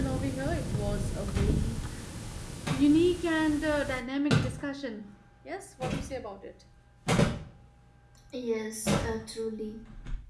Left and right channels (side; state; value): both; identical; correlation 1.00